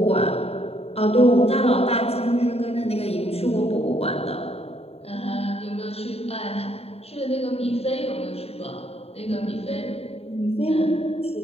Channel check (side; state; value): right; late; 0.29 ms